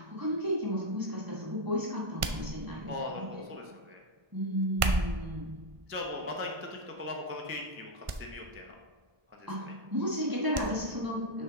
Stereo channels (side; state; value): left; late; 1.4 ms